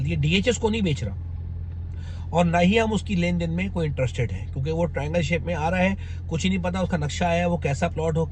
दिया, DHS को नहीं बेच रहा और ना ही हम उसकी लेन देन में कोई इंटरेस्टेड है, क्योंकि वो ट्रायंगल शेप में आ रहा है। कुछ ही नहीं पता उसका नक्शा है, वो कैसा प्लॉट हो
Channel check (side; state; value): both; identical; correlation 1.00